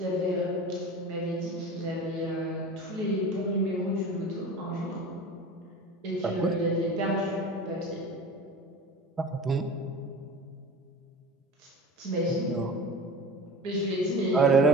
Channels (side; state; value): both; normal; correlation 0.35